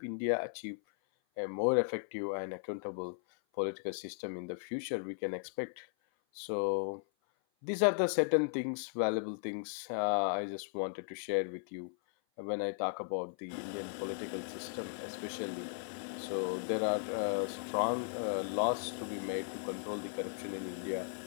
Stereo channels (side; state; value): right; silent; 53 dB below the other